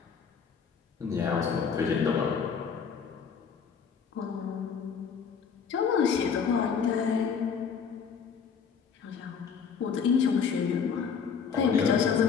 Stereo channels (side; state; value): right; quieter; 6.5 dB